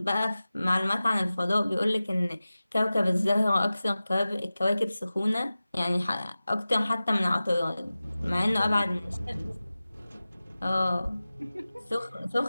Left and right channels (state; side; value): inverted; both; correlation -0.96